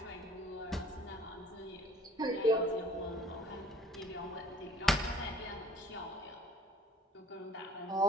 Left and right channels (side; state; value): both; normal; correlation 0.53